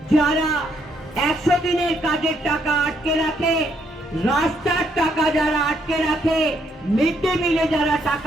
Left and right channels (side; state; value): both; normal; correlation 0.73